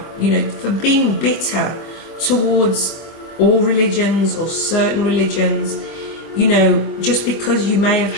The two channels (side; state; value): right; late; 24 ms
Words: for being bitter towards all religions or certain religions. Just because you may